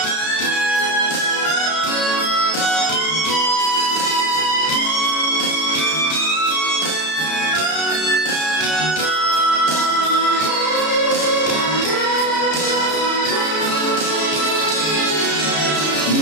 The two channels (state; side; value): late; right; 32 ms